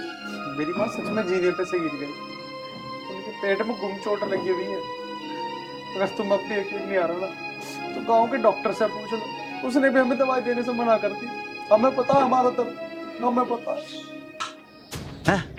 मेरी माँ सच में जीने पे से गिर गई, उनके पेट में गुम चोट लगी हुई है। अगर तुम अब भी यकीन नहीं आ रहा ना तो गांव के डॉक्टर से पूछ लो, उसने भी हमें दवाई देने से मना कर दी। हमें पता है हमारा दर्द, हमें पता है।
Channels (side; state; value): both; identical; correlation 1.00